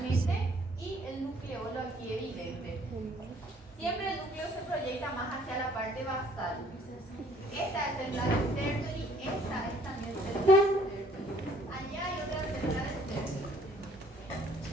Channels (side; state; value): both; normal; correlation 0.60